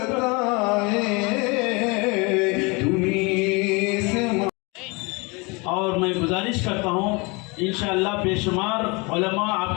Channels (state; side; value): quieter; right; 28.1 dB